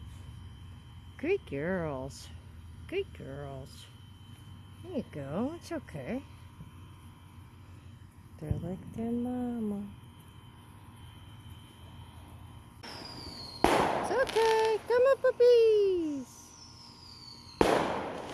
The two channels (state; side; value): identical; both; correlation 1.00